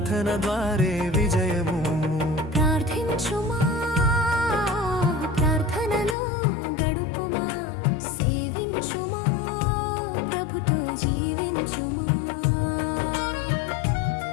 ద్వారే విజయము ప్రార్థించుమా ప్రార్థనలో గడుపుమా సేవించుమా ప్రభుతో జీవించుమా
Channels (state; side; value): drops out; right; at 6.2 s